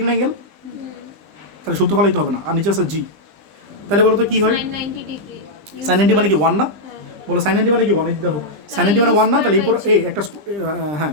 অ্যাঙ্গেল, তাহলে সূত্র ফলাইতে হবে না, আর নিচে আছে g, তাহলে বলো তো কি হয়, sin 90 ডিগ্রি। sin 90 মানে কি 1 না? বলো sin 90 মানে কি 1, এই দেখো sin 90 মানে 1 না? তাহলে এরপর এই একটা হ্যাঁ,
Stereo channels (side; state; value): left; late; 20 ms